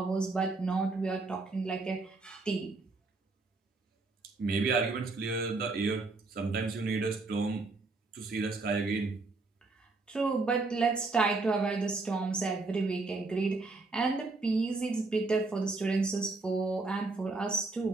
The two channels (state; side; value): quieter; left; 3.6 dB